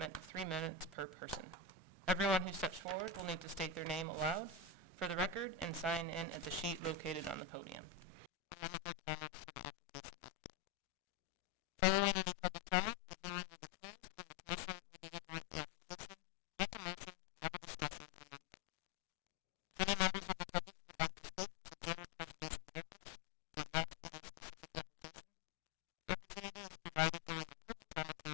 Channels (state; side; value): drops out; right; at 8.3 s